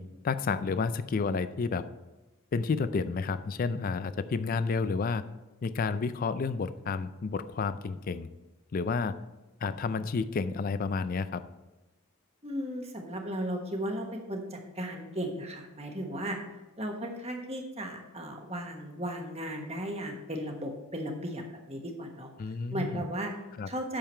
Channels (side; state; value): right; quieter; 3.0 dB